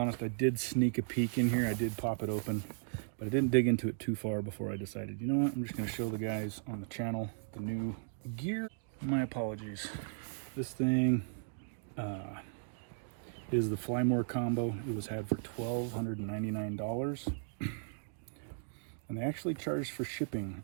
I did sneak a peek in here. I did pop it open, but I didn't dig into it too far before I decided, you know what, I'm just going to show the guys on the channel the new gear. My apologies. This thing is the Fly More combo. It was had for $1,299. And they actually charged for shipping,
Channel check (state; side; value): silent; left; digital silence